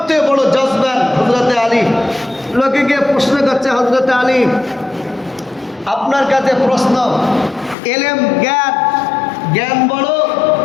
বড় জজবান হযরতে আলী। লোকে গিয়ে প্রশ্ন করছে, হযরতে আলী, আপনার কাছে প্রশ্ন, এলেম জ্ঞান, জ্ঞান বড়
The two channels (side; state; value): right; drops out; at 7.8 s